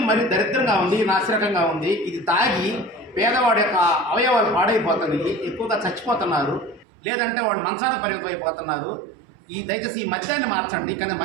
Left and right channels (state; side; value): drops out; left; at 6.9 s